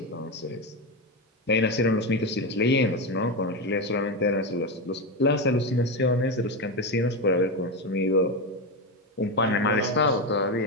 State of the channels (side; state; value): both; normal; correlation 0.13